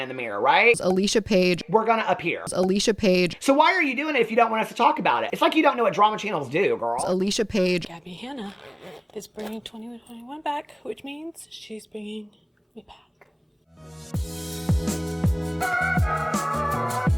the mirror, right? Alicia Page. We're gonna appear. Alicia Page. So why are you doing it if you don't want us to talk about it? It's like you don't know what drama channels do, girl. Alicia Page. Gabbie Hanna is bringing 2021 back, which means she's bringing me back.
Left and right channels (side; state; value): both; identical; correlation 1.00